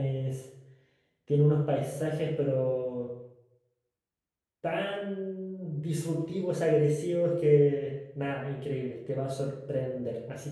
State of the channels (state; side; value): identical; both; correlation 1.00